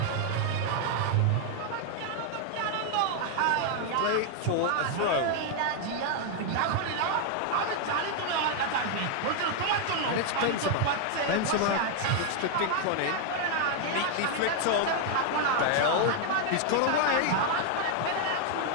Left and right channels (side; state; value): both; different; correlation 0.00